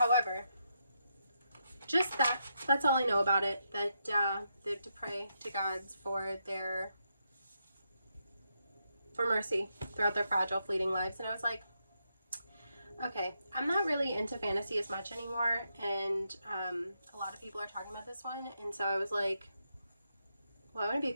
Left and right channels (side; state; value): both; inverted; correlation -0.82